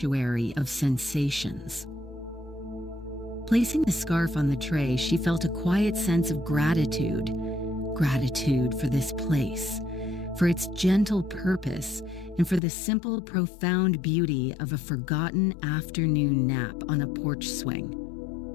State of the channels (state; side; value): drops out; right; at 12.6 s